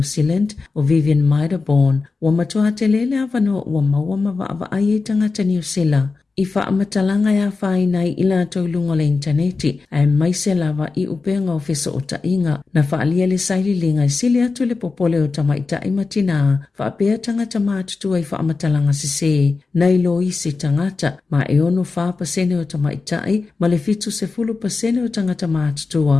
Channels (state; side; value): quieter; right; 4.2 dB